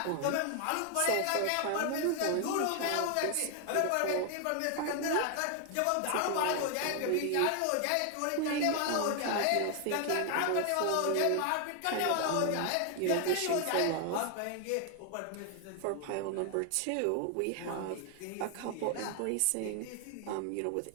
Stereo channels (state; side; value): different; both; correlation 0.00